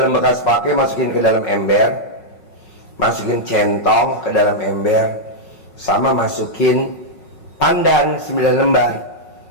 bekas pakai masukin ke dalam ember, masukin centong ke dalam ember, sama masukin pandan 9 lembar.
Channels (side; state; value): right; late; 5.4 ms